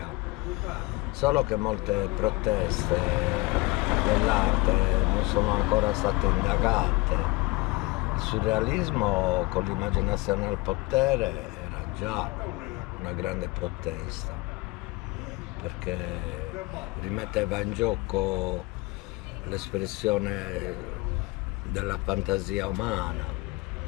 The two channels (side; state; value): right; quieter; 23.7 dB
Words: solo che molte proteste dell'arte non sono ancora state indagate. Il surrealismo con l'immaginazione al potere era già una grande protesta, perché rimetteva in gioco l'espressione della fantasia umana,